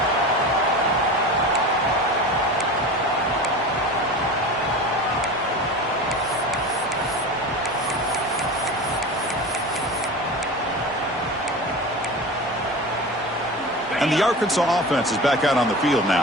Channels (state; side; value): normal; both; correlation 0.31